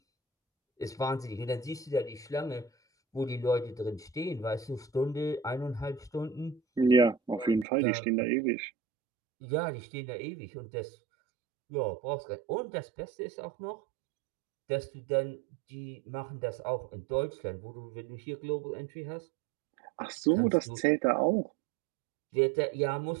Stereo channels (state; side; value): drops out; left; at 7.7 s